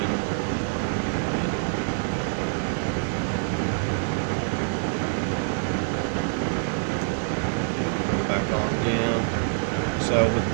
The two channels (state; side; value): silent; left; digital silence